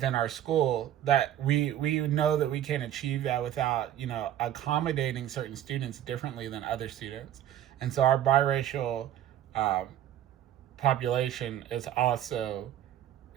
our school, that we know that we can't achieve that without accommodating certain students differently than other students. And so our biracial population is also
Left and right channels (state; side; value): quieter; left; 11.7 dB